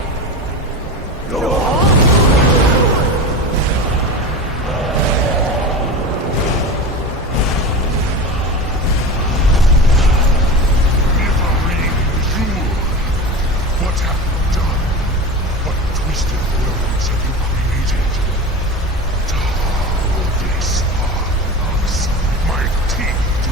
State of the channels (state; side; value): normal; both; correlation 0.28